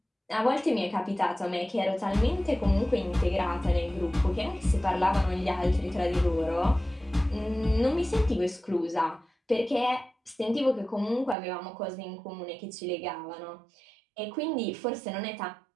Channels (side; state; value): left; drops out; at 11.4 s